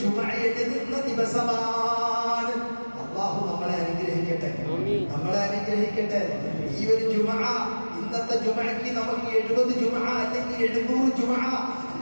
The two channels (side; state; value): both; inverted; correlation -1.00